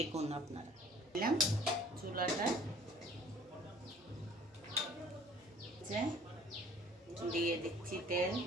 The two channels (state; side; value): normal; both; correlation 0.52